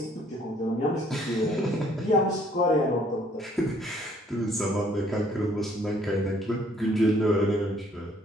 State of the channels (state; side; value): normal; both; correlation 0.62